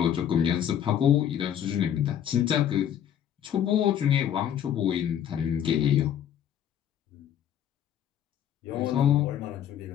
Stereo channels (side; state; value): right; quieter; 9.9 dB